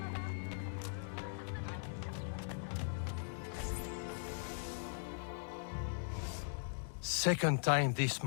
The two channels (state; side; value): silent; right; digital silence